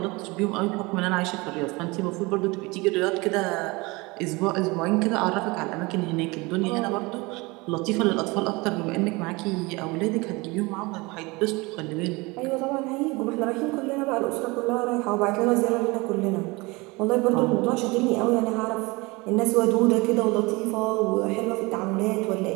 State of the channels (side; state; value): left; quieter; 24.5 dB